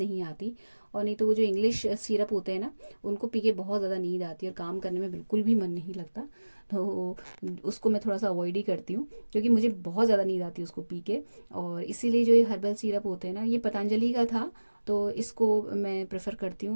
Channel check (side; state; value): both; inverted; correlation -1.00